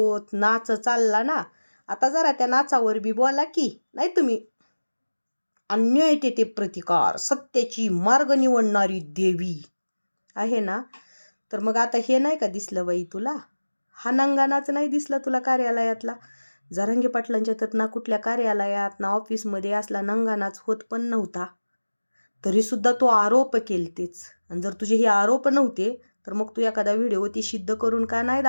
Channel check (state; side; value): inverted; both; correlation -1.00